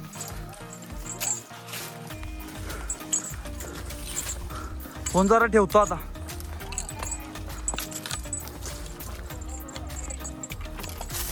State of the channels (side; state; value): both; identical; correlation 1.00